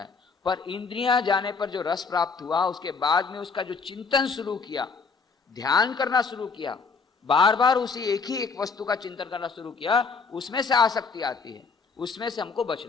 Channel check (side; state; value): right; quieter; 5.0 dB